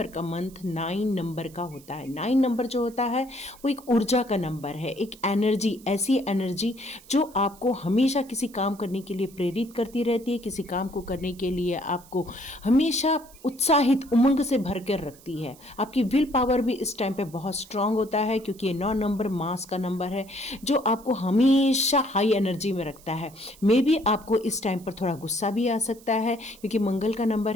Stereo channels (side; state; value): right; noise; hiss, 23 dB below the sound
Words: का मंथ 9 नंबर का होता है। 9 नंबर जो होता है वो एक ऊर्जा का नंबर है, एक एनर्जी, ऐसी एनर्जी जो आपको हमेशा किसी काम करने के लिए प्रेरित करती रहती है, किसी काम को करने के लिए आपको हमेशा उत्साहित, उमंग से भर कर रखती है। आपकी विल पावर भी इस टाइम पे बहुत स्ट्रांग होता है क्योंकि ये 9 नंबर मास का नंबर है जो आपको हमेशा हाई एनर्जी में रखता है। मे बी आपको इस टाइम पर थोड़ा गुस्सा भी आ सकता है क्योंकि मंगल का नंबर